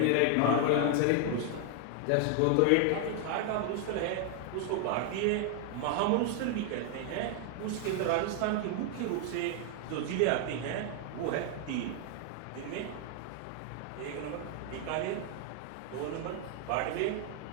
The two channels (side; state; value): both; different; correlation 0.00